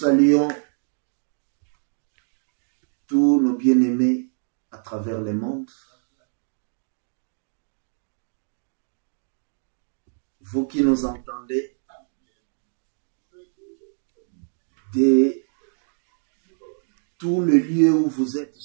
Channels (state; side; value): silent; left; digital silence